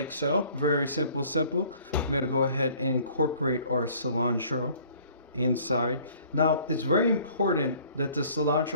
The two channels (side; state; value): both; inverted; correlation -0.55